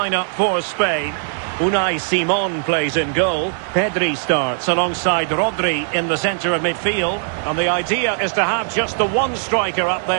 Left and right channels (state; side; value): silent; left; digital silence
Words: for Spain. Unai Simon plays in goal. Pedri starts alongside Rodri in the centre of midfield. And the idea is to have just the one striker up